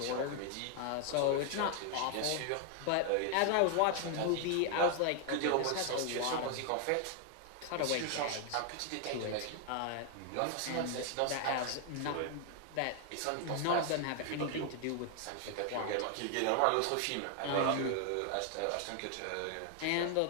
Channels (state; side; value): different; both; correlation 0.00